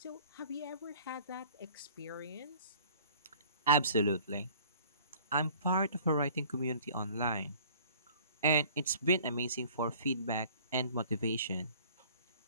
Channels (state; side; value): inverted; both; correlation -0.52